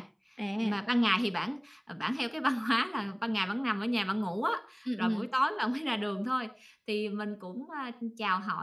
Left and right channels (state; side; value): identical; both; correlation 1.00